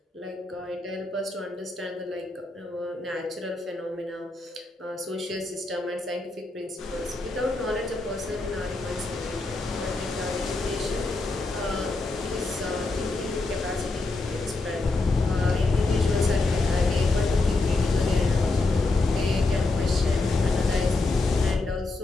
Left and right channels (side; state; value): right; quieter; 3.3 dB